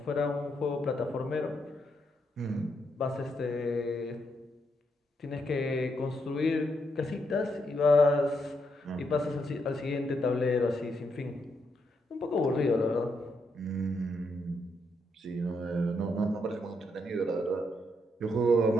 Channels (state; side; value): normal; both; correlation 0.78